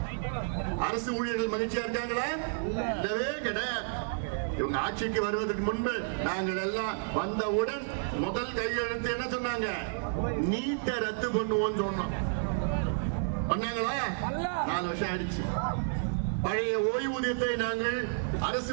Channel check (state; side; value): silent; left; digital silence